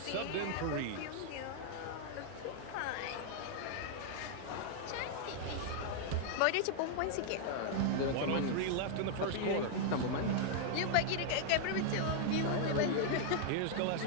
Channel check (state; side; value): different; both; correlation -0.01